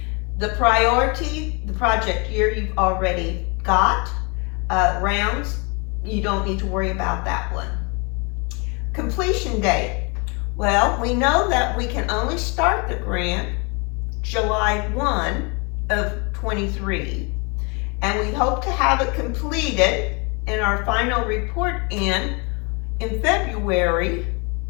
The priority, the project year you've already got. Rounds, you don't need to worry about that one. Completion date. Well, we know that we can only start the grant July 1 of 23. And we hope to have it completed in our final report in February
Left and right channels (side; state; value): right; quieter; 31.5 dB